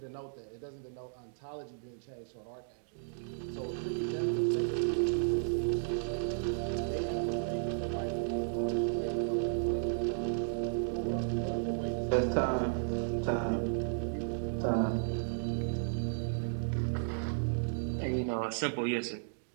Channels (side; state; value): left; silent; digital silence